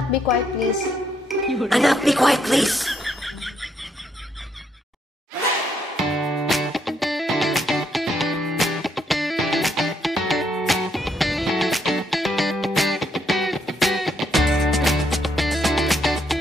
be quiet, please. Anak, be quiet, please.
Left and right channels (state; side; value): normal; both; correlation 0.74